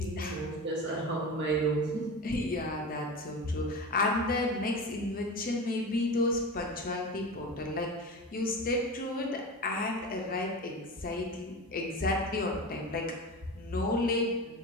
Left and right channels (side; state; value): both; normal; correlation 0.28